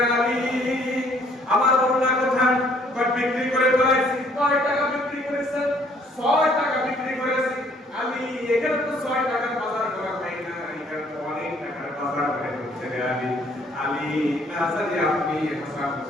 আলী আমার ওড়না কোথায়? বিক্রি করে ফেলাইছি। 6 টাকা বিক্রি করেছেন? 6 টাকা বিক্রি করেছি। আলী এখানে তো 6 টাকার বাজার করা হয় না, এখানে তো অনেক টাকার বাজার করে হচ্ছে রে আলী। আলী না জানি আপনি হাসান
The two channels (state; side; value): normal; both; correlation 0.62